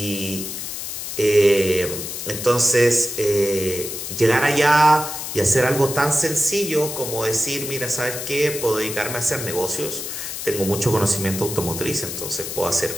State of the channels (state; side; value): noise; left; hiss, 6 dB below the sound